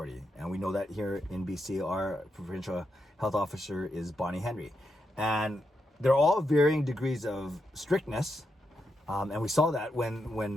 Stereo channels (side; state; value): both; normal; correlation 0.84